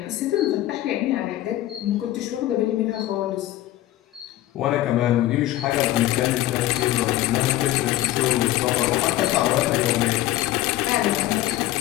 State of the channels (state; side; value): quieter; right; 14.9 dB